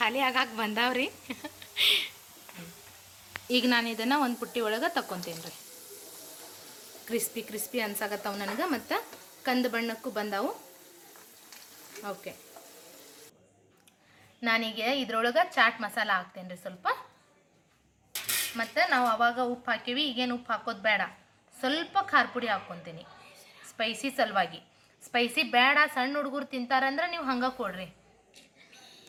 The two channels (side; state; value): both; identical; correlation 1.00